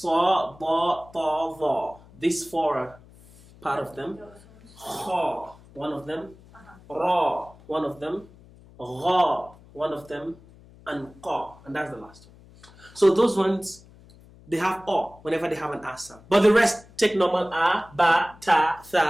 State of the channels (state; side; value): noise; left; hum, 24 dB below the sound